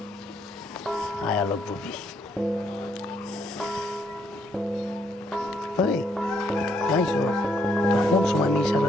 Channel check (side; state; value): both; normal; correlation 0.72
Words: আয়ালো বুবি, কোন সময় আমি ইশারা